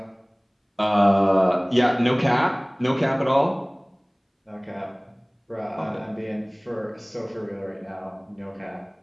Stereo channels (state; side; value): identical; both; correlation 1.00